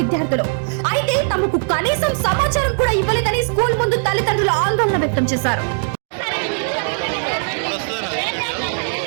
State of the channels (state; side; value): silent; left; 58 dB below the other